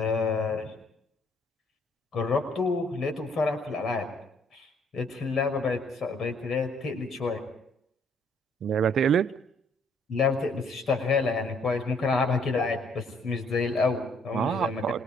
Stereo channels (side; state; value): both; normal; correlation 0.64